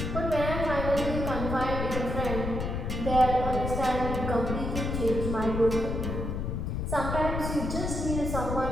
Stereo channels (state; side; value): noise; left; rumble, 2 dB below the sound